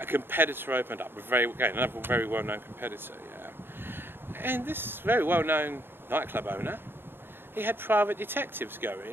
competitor opened up, another very well-known competitor, And this very well-known nightclub owner, he had private detectives go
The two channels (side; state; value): left; late; 0.10 ms